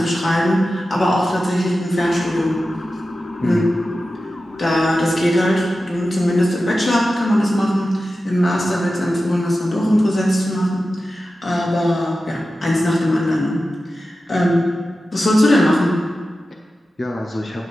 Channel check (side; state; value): both; normal; correlation 0.93